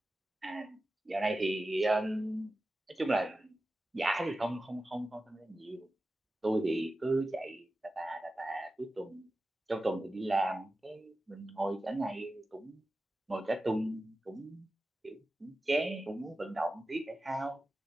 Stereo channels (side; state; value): both; normal; correlation 0.94